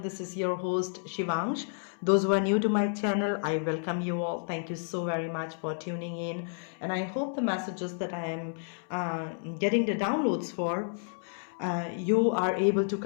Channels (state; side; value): silent; right; 57 dB below the other